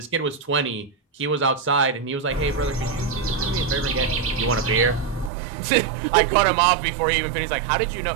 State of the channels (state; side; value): drops out; left; at 5.3 s